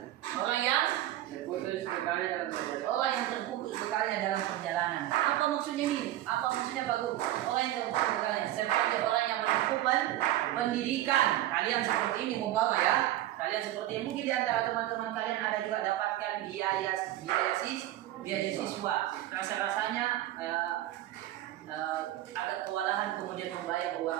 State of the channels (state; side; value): quieter; left; 14.4 dB